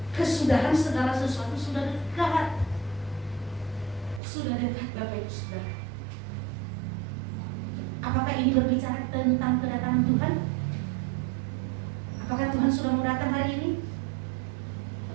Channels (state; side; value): drops out; left; at 4.2 s